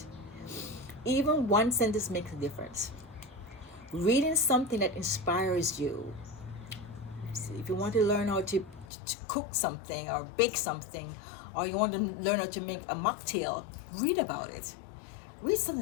Even one sentence makes a difference. Reading something that inspires you. If you want to learn how to cook something or bake something, or you want to learn how to make a mocktail, read about it. Read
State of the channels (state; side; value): drops out; right; at 8.8 s